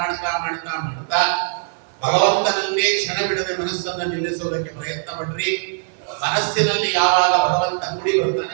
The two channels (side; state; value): left; silent; 63 dB below the other